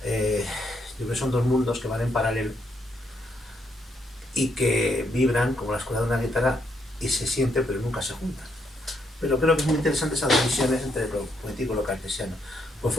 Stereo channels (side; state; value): both; normal; correlation 0.75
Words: Yo creo que son dos mundos que van en paralelo y que vibran como las cuerdas de una guitarra y se sienten pero nunca se juntan. Pero creo que es muy interesante esas divisiones entre lo poético y lo cartesiano.